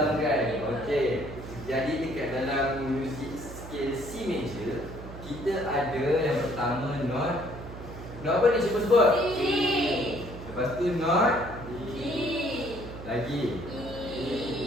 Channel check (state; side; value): noise; right; hum, 12 dB below the sound